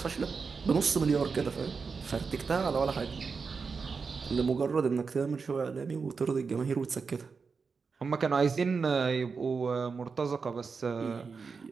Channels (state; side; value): quieter; left; 5.1 dB